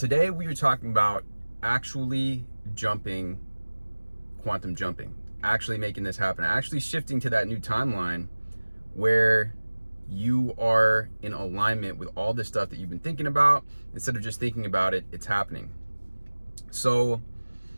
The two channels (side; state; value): both; inverted; correlation -1.00